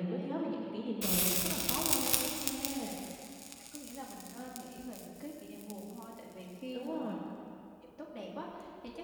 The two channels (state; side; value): identical; both; correlation 1.00